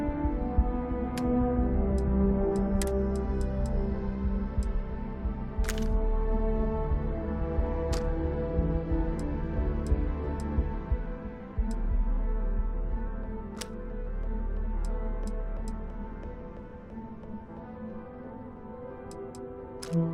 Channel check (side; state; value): both; identical; correlation 1.00